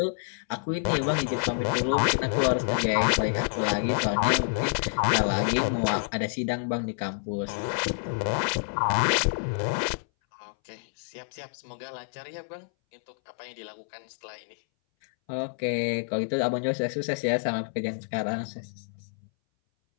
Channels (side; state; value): right; silent; 59 dB below the other